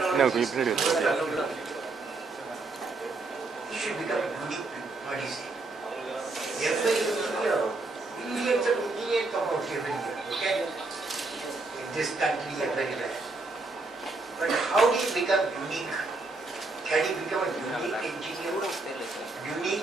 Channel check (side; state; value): left; quieter; 3.5 dB